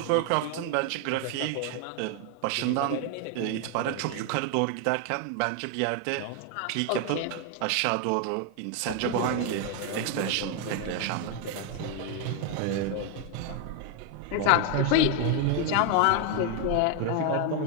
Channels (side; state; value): both; different; correlation 0.01